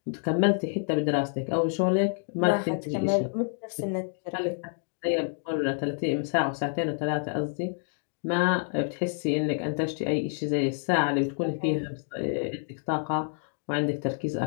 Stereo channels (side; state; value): right; silent; 59 dB below the other